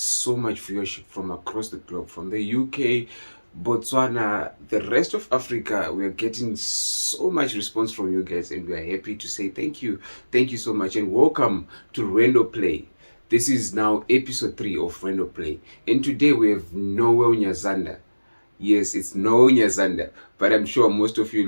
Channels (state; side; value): inverted; both; correlation -1.00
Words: much viewership from across the globe, from the UK, Botswana, the rest of Africa. We're getting so much response from you guys, and we're happy to say thank you. Thank you so much, and welcome to Rwendo Play. This is now episode 3 of Rwendo Play, and today we have Noel Nyazanda. Yes, it's Noel Nyazanda, but I'm sure most of you